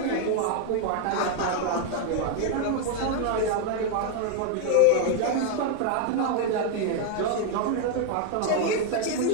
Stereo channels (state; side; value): different; both; correlation 0.00